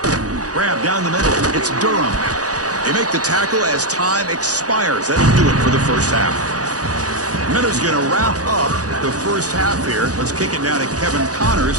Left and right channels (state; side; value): late; left; 0.67 ms